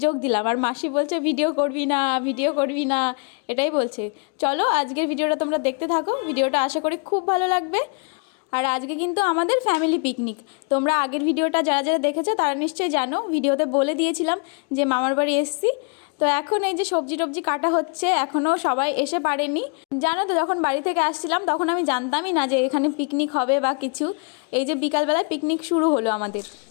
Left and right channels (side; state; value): right; quieter; 36.7 dB